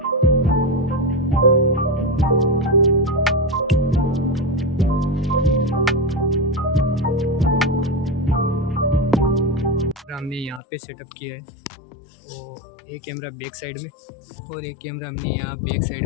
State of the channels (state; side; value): drops out; right; at 10.6 s